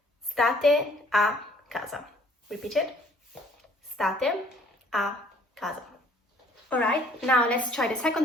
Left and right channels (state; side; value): normal; both; correlation 0.58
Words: state a casa. Repeat it. State a casa. Alright, now let's try the